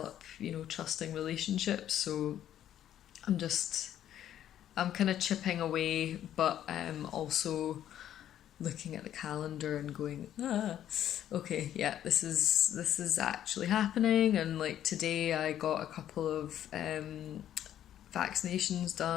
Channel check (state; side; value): quieter; right; 11.1 dB